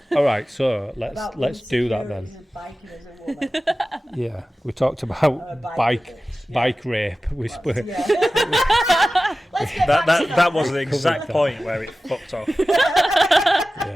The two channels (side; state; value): both; normal; correlation 0.95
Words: All right, so about let's do that then. insecurities of biking as a woman. Yeah, we talked about bike rape. We spoke. Yeah. Let's get back to That was the exact point where it fucked off.